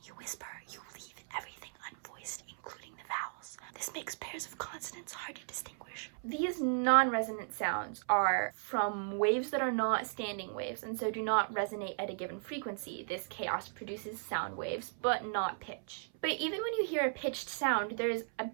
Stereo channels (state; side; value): silent; left; 54 dB below the other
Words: you whisper, you leave everything unvoiced, including the vowels. This makes pairs of consonants hard to distinguish. These non-resonant sounds are from waves that are not standing waves and so do not resonate at a given frequency. This chaos produces sound waves, but not pitch. But even when you hear a pitched sound, there's a